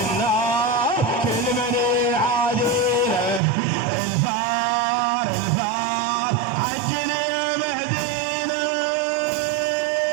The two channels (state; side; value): drops out; left; at 3.4 s